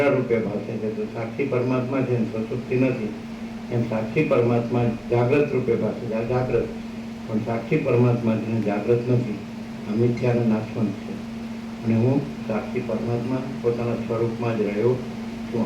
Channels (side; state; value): both; identical; correlation 1.00